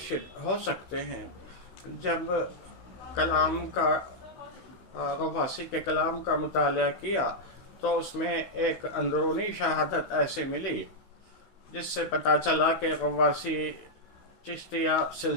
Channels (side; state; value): right; late; 16 ms